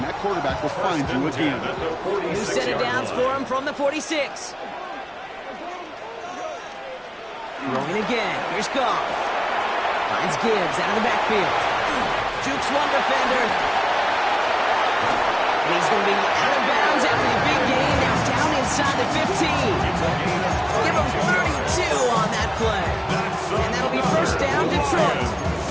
that quarterback will find you again. New set of downs for him from the 46. Rolling again. Here's Goff. Finds Gibbs out of the backfield. Jukes one defender. And he's going to be out of bounds after the big gain. Now down inside the 15. Give him 32 on that play. And that'll be 1st down, Detroit.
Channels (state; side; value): identical; both; correlation 1.00